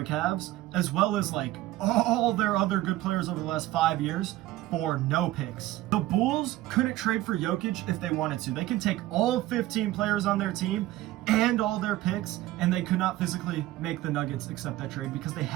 Cavs, as well as like all their other good players over the last 5 years for no picks. The Bulls couldn't trade for Jokic if they wanted to. They can take all 15 players on their team and all their picks, and they could not physically make the Nuggets accept that trade because they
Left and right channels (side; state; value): left; quieter; 15.9 dB